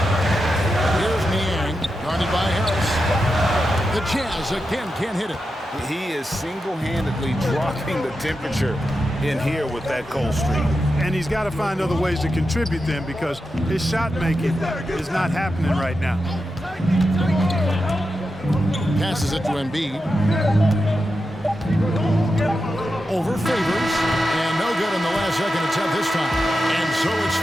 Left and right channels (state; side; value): normal; both; correlation 0.89